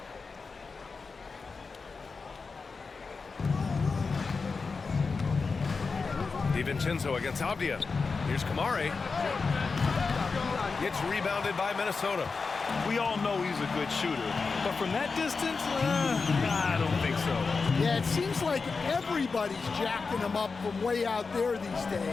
DiVincenzo against Avdia. Here's Kamari. Gets rebounded by Minnesota. We all know he's a good shooter, but from that distance, I don't think so. Yeah, it seems like everybody's jacking him up from way out there these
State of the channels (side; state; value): right; quieter; 4.6 dB